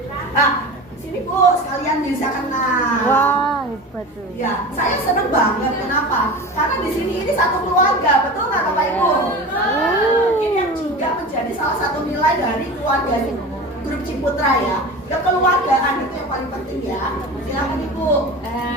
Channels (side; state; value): both; normal; correlation 0.32